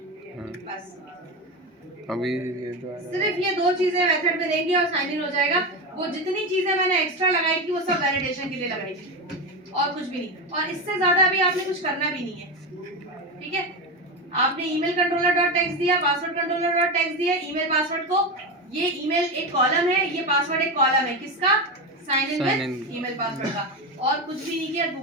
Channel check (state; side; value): normal; both; correlation 0.17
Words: बस अभी ये तो सिर्फ ये दो चीजें मेथड में देंगे और साइन इन हो जाएगा। वो जितनी चीजें मैंने एक्स्ट्रा लगाई थी वो सब वैलिडेशन के लिए लगाई थी और कुछ भी नहीं, और इससे ज्यादा अभी आपने कुछ करना भी नहीं है। ठीक है, आपने ईमेल कंट्रोलर डॉट टेक्स्ट दिया, पासवर्ड कंट्रोलर डॉट टेक्स्ट दिया, ईमेल पासवर्ड को, ये ईमेल एक कॉलम है, ये पासवर्ड एक कॉलम है, किसका? Sign in with email password का, और कुछ भी नहीं किया,